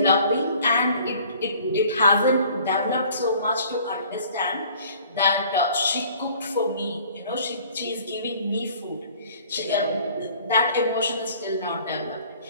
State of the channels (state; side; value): inverted; both; correlation -0.53